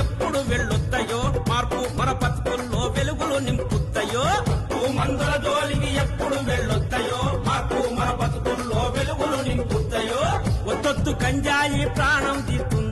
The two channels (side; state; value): both; identical; correlation 1.00